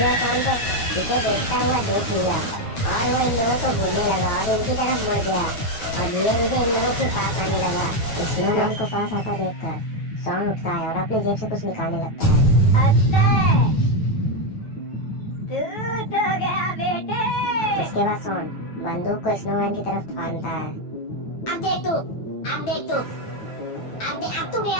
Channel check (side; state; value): right; late; 9.2 ms